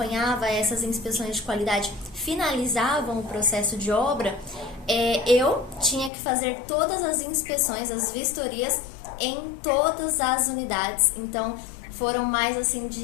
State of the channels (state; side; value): drops out; right; at 6.1 s